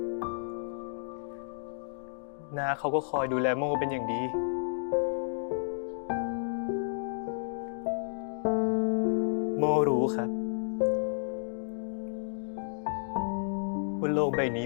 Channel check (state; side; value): silent; right; digital silence